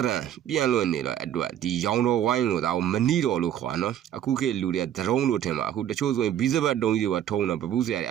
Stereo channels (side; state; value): left; quieter; 10.6 dB